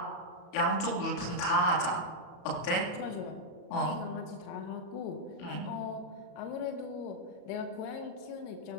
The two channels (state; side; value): late; right; 34 ms